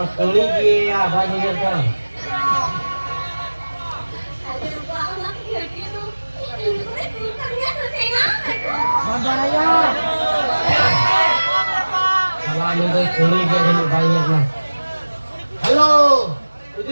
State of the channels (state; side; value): inverted; both; correlation -1.00